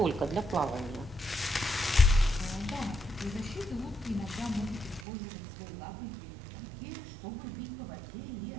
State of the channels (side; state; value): left; drops out; at 5.1 s